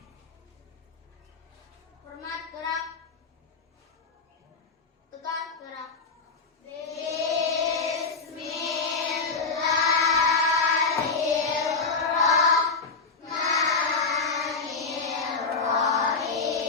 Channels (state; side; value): quieter; right; 4.5 dB